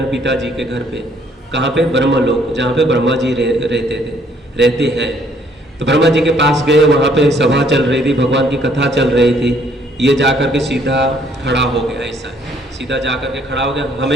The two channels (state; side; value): normal; both; correlation 0.64